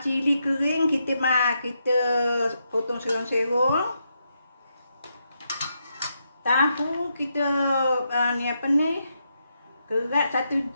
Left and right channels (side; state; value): both; inverted; correlation -0.82